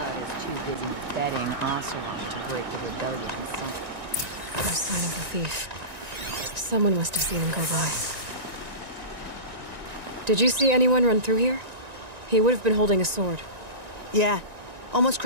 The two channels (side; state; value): left; late; 1.9 ms